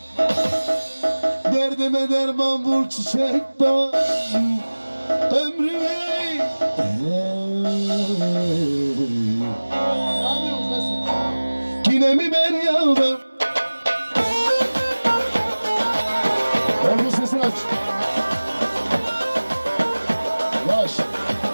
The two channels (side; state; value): both; inverted; correlation -1.00